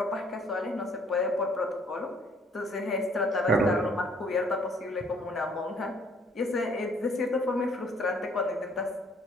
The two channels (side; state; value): both; normal; correlation 0.61